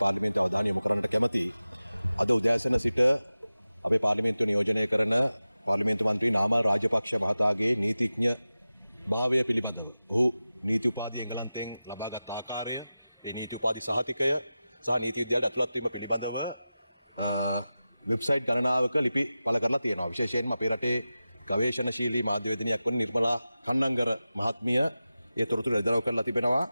පාර්ලිමේන්තුව අවධානය යොමු කරන්නට කැමතියි. අද උදෑසන සිට අපේ පාර්ලිමේන්තුව නියෝජනය කරන පාර්ලිමේන්තු මන්ත්‍රී නාමල් රාජපක්ෂ මහතාගේ නීතිඥ භාවය පිළිබඳව ඔහු නීති උපාධිය එංගලන්තයෙන් ලබාගත් ආකාරය, ඒ නීති උපාධි සහතිකය සහ නීති විද්‍යාලයට ඇතුළත් වීම පිළිබඳව වෙබ්සයිට් ගණනාවක ලිපි පළ කරලා තියෙනවා. විශේෂයෙන්ම අපේ රටේ ගවේෂණශීලී මාධ්‍යවේදිනියක් වන නිර්මලා කන්නංගර මහත්මිය ඒ තොරතුරු එළිදරව් කරලා තිබෙනවා.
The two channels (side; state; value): both; inverted; correlation -0.95